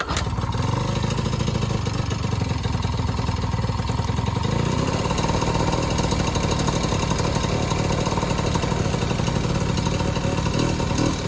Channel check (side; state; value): both; identical; correlation 1.00